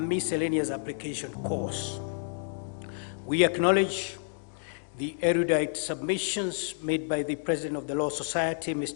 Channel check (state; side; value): silent; right; digital silence